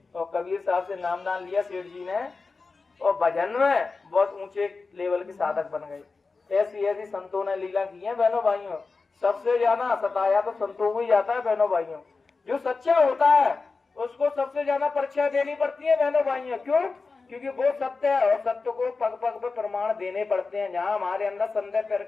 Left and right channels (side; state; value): right; quieter; 4.2 dB